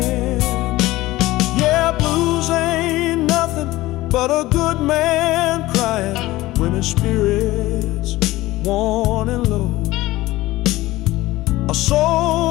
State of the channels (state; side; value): quieter; right; 17.9 dB